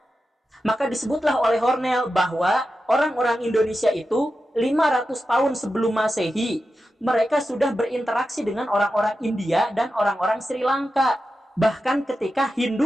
Maka disebutlah oleh Hornell bahwa orang-orang Indonesia itu 500 tahun sebelum Masehi, mereka sudah berinteraksi dengan orang-orang India dan orang-orang Sri Lanka. Bahkan ketika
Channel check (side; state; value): both; normal; correlation 0.91